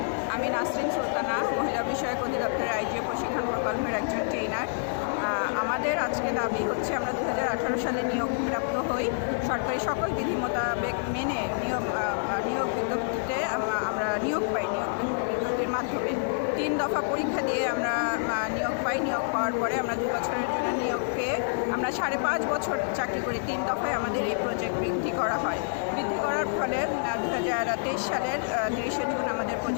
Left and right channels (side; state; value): right; silent; 56 dB below the other